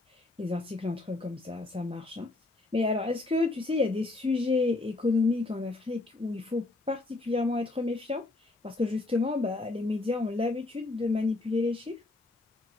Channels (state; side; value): quieter; right; 3.0 dB